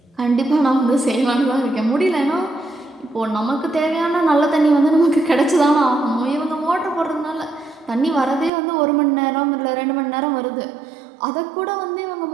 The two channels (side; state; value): left; drops out; at 8.5 s